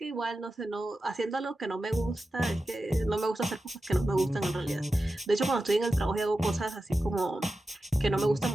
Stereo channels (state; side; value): normal; both; correlation 0.92